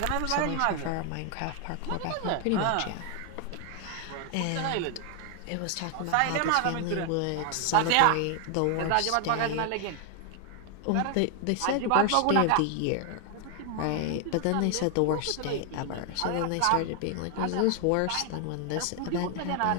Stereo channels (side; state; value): both; different; correlation 0.00